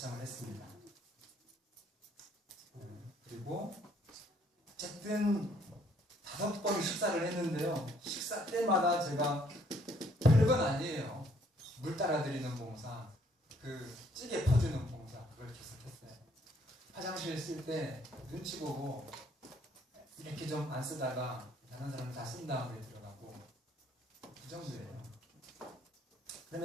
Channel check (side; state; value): both; normal; correlation 0.65